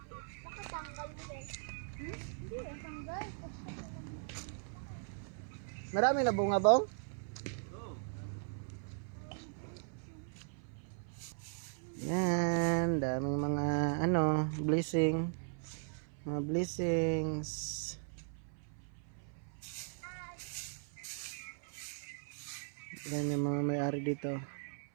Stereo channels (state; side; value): silent; left; 52 dB below the other